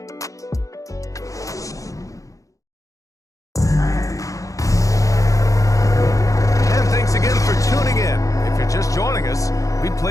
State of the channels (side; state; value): right; late; 0.16 ms